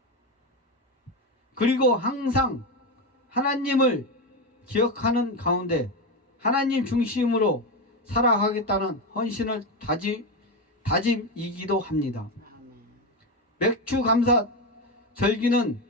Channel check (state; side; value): normal; both; correlation 0.14